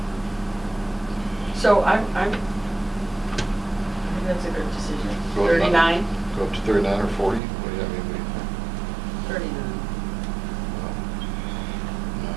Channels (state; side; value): drops out; left; at 7.4 s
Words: So I think that's a good decision. Go up 39? Go up to 39 or 40? What do you, I mean, what do you think? 39. Well, 9,